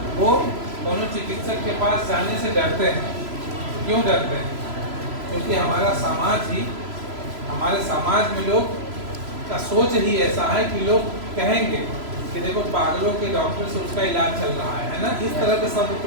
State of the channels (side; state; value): left; late; 3.0 ms